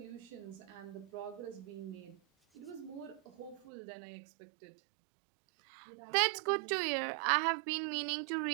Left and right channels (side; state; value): left; drops out; at 3.7 s